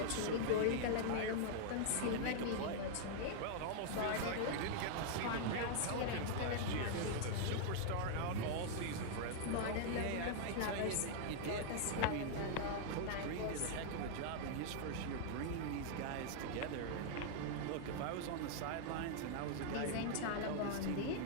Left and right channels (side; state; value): both; different; correlation -0.01